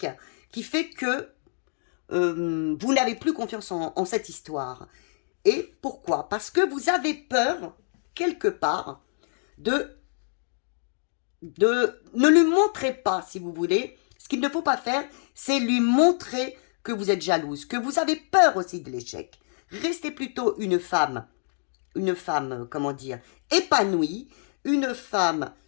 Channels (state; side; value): silent; right; digital silence